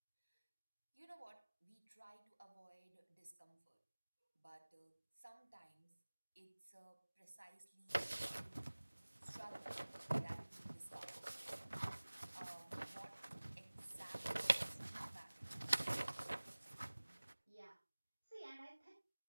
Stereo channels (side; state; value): both; inverted; correlation -1.00